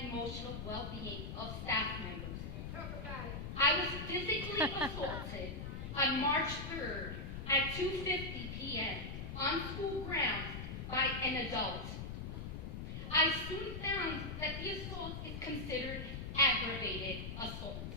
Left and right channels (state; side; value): noise; left; rumble, 6 dB below the sound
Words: emotional well-being of staff members. I was physically assaulted on March 3rd at 2:50 p.m. on school grounds by an adult. I soon found that the assault is considered aggravated assault.